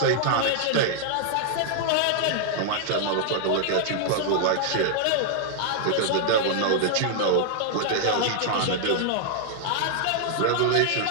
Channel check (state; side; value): different; both; correlation -0.01